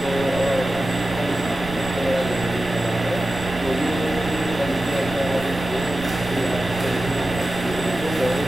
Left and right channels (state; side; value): noise; right; rumble, 16 dB below the sound